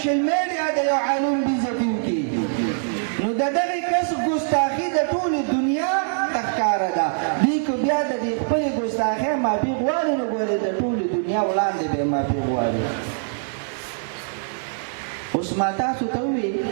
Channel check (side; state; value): left; silent; digital silence